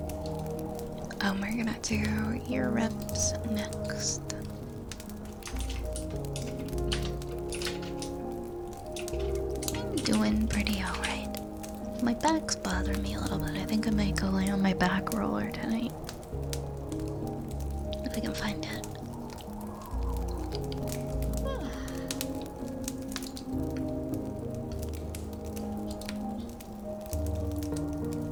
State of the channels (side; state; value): both; identical; correlation 1.00